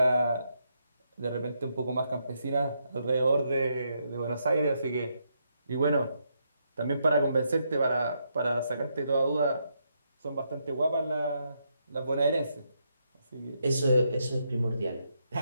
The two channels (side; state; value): both; inverted; correlation -0.79